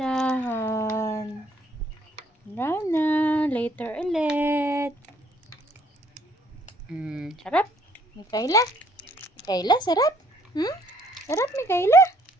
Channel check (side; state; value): both; normal; correlation 0.64